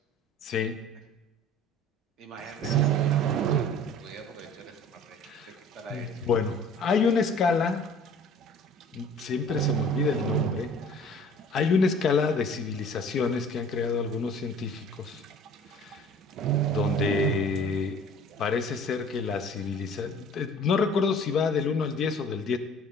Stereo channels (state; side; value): normal; both; correlation 0.48